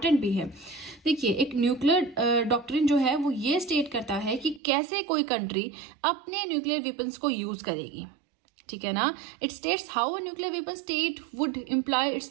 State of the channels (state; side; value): drops out; left; at 4.6 s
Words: भी है। देखिए एक न्यूक्लियर डॉक्ट्रिन जो है वो ये स्टेट करता है कि कैसे कोई कंट्री अपने न्यूक्लियर वेपन्स को यूज करेगी, ठीक है ना। It states how a nuclear weapon state would employ its